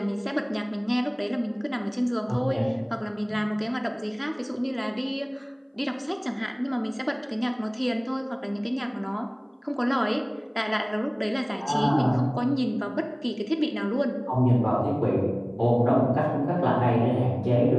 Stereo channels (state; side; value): identical; both; correlation 1.00